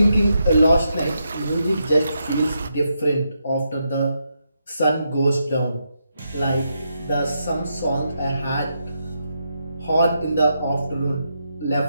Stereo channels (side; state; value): both; inverted; correlation -0.82